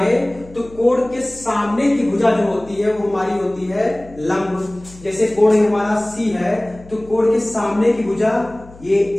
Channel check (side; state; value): left; noise; hum, 21 dB below the sound